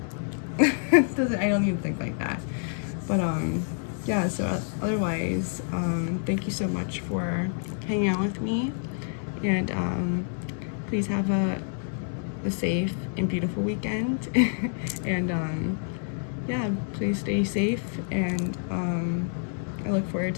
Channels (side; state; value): right; silent; digital silence